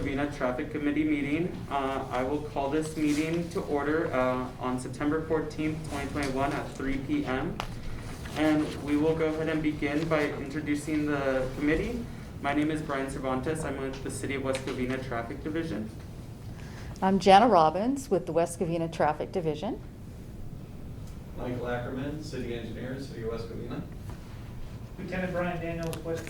Traffic Committee meeting. I will call this meeting to order on September 14th, 2021 at 3 p.m. And we will go ahead and begin by introducing the committee. My name is Brian Cervantes. I'm with the City of West Covina Traffic Division. I'm Jana Robbins with the West Covina Traffic Division. Michael Ackerman, City Engineer, City of West Covina. Lieutenant Brian Daniels, West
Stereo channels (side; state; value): both; identical; correlation 1.00